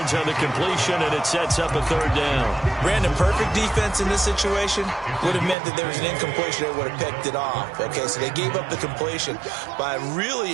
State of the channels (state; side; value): drops out; left; at 5.6 s